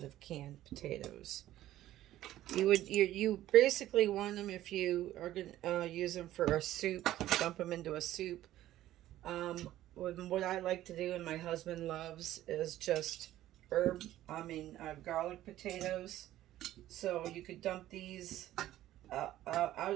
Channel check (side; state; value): left; quieter; 13.9 dB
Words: of canned potatoes. You basically want them, if you are going to use them for a soup, dump them into a soup. What I like to do and my husband loves is just garlic potatoes. So you could dump these out